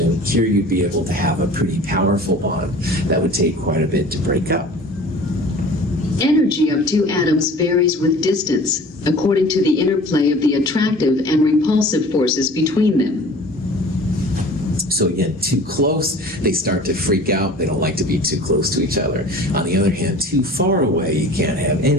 Here, you'd be able to have a pretty powerful bond that would take quite a bit to break up. Energy of two atoms varies with distance, according to the interplay of the attractive and repulsive forces between them. So again, too close, they start to freak out. They don't like to be too close to each other. On the other hand, too far away, you can't have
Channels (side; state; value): both; normal; correlation 0.43